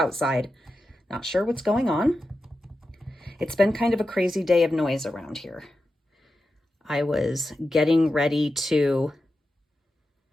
Not sure what's going on. It's been kind of a crazy day of noise around here. I was getting ready to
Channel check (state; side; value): normal; both; correlation 0.90